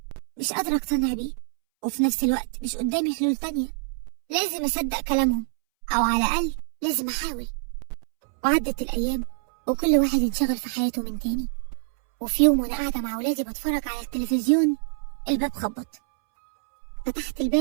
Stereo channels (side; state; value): left; silent; 61 dB below the other